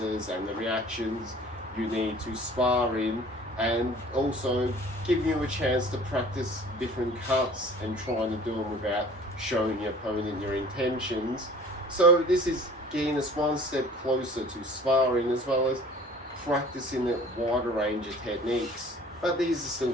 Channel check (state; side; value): normal; both; correlation 0.48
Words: and the reactions you need to spar in, and also giving you a chance to practice different cuts and trying to do them without showing your opponent your intentions. So this is getting us one step closer to sparring, as well as practicing a wider range of techniques. But these are still